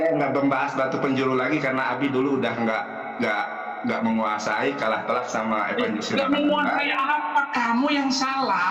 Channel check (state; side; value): identical; both; correlation 1.00